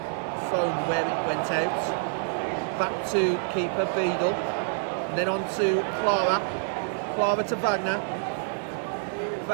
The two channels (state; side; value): silent; left; 60 dB below the other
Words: thrown where it went out. Back to keeper Beadle. And then on to Clara. Clara to Wagner.